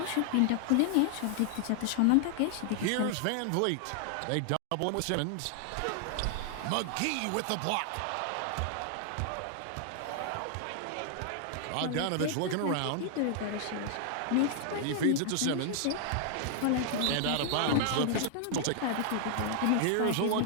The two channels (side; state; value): both; different; correlation 0.00